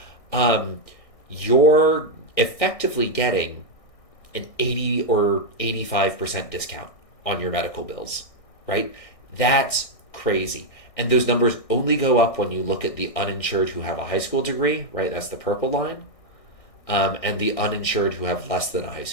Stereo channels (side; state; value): right; late; 1.6 ms